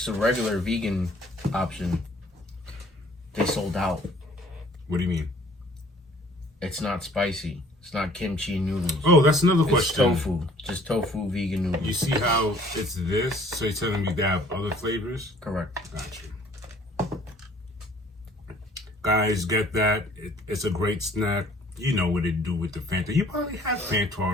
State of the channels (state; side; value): normal; both; correlation 0.56